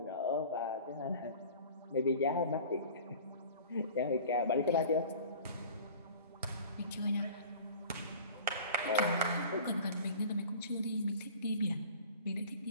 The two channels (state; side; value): inverted; both; correlation -0.44